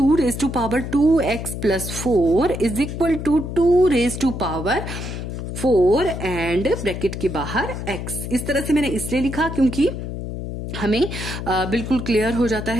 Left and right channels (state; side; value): noise; left; hum, 6 dB below the sound